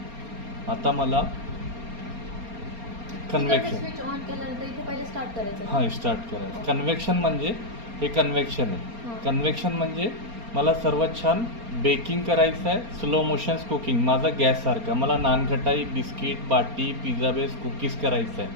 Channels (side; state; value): left; late; 4.3 ms